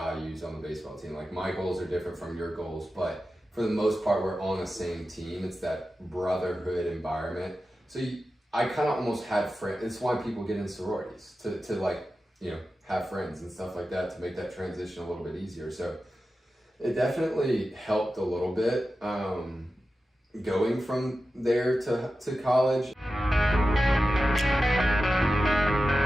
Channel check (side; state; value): both; normal; correlation 0.93